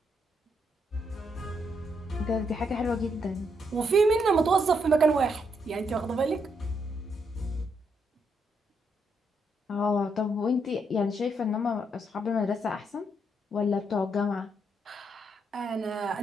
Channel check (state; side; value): normal; both; correlation 0.77